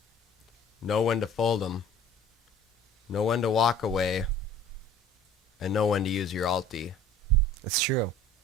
know when to fold 'em, know when to walk away, and know when to use your ulti." It's true.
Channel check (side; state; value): both; normal; correlation 0.48